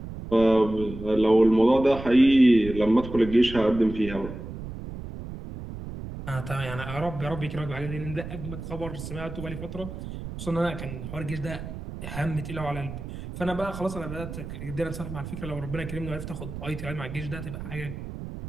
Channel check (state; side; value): noise; right; rumble, 10 dB below the sound